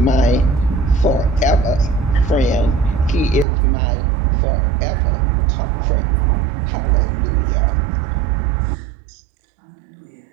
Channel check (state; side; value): drops out; left; at 3.5 s